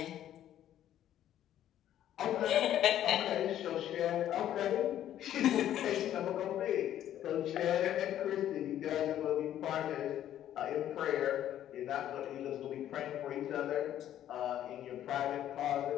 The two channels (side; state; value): right; quieter; 11.6 dB